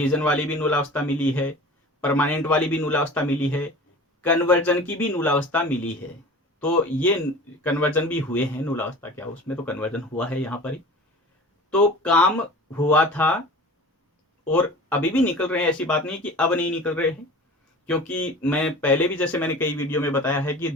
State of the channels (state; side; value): normal; both; correlation 0.39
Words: वाली भी नूलावस्था मिली है, परमानेंट वाली भी नूलावस्था मिली है, कन्वर्जन की भी नूलावस्था मिली है। तो ये कन्वर्जन भी हुए हैं, नूलावस्था क्या उसमें तो कन्वर्जन हुआ है यहाँ पर ही, तो काम हुआ था और अभी भी निकल रहे हैं, ऐसी बात नहीं कि अब नहीं निकल रहे हैं। क्योंकि मैं पहले भी, जैसे मैंने कई वीडियो में बताया है कि